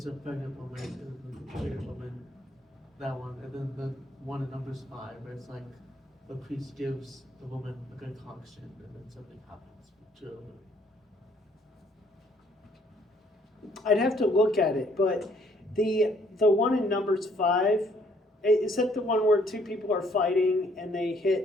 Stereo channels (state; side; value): normal; both; correlation 0.64